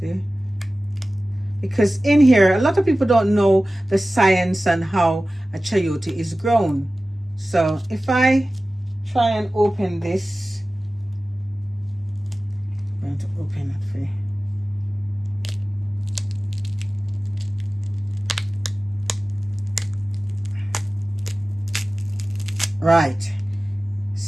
Because in here, a lot of people don't know the science and how a chayote is grown. So if I try and open this, I'm going to open it for you. Right,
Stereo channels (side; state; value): both; normal; correlation 0.96